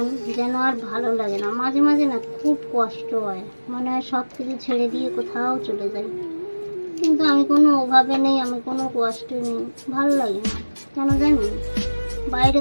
যেন আর ভালো লাগে না। মাঝে মাঝে না খুব কষ্ট হয়, মনে হয় সব কিছু ছেড়ে দিয়ে কোথাও চলে যাই, কিন্তু আমি কোনো অভাবে নেই, আমি কোনো কষ্টে নেই, ভালো লাগে না কেন জানি। বাইরে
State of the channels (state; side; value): inverted; both; correlation -1.00